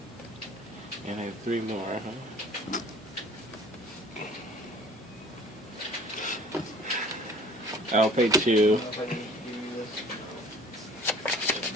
And I have 3 more, huh? I'll pay 2.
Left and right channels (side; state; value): both; normal; correlation 0.49